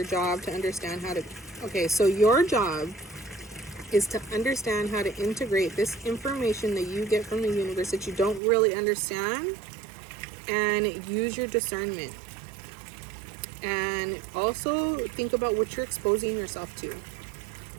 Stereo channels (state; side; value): drops out; left; at 8.4 s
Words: job to understand how to, okay, so your job is to understand how to integrate this information that you get from the universe that you don't really understand, and use your discernment. And also think about what you're exposing yourself to.